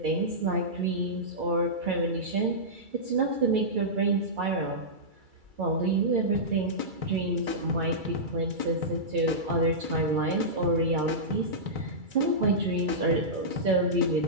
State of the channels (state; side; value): late; left; 2.3 ms